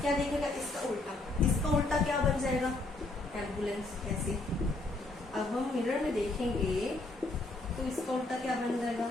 देखेगा, इसका उल्टा। इसका उल्टा क्या बन जाएगा, एम्बुलेंस। ऐसे अब हम मिरर में देखेंगे तो इसका उल्टा क्या बन जाएगा,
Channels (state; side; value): quieter; right; 3.0 dB